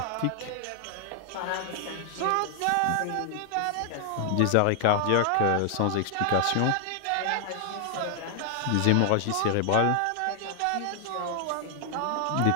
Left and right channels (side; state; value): both; different; correlation 0.00